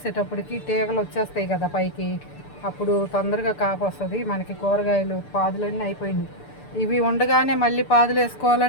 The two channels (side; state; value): right; late; 6.8 ms